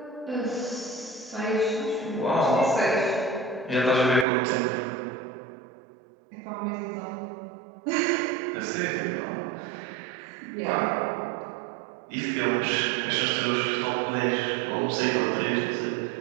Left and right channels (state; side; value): drops out; left; at 4.2 s